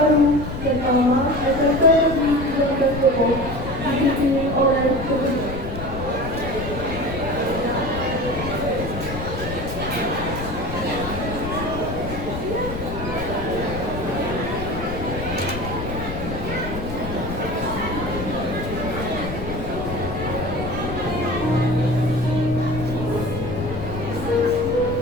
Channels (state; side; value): noise; left; rumble, 7 dB below the sound